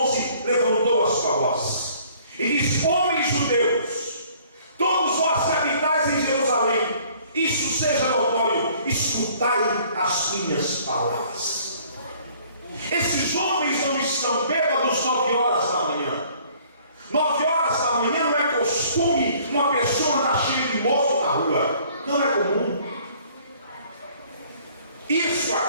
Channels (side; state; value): both; inverted; correlation -0.57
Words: levantou a sua voz e disse: homens judeus, todos vós que habitais em Jerusalém, isso seja notório, escutai as minhas palavras. Esses homens não estão bêbados 9 horas da manhã. 9 horas da manhã não é costume uma pessoa andar cheia de moço na rua. Não é comum. Isso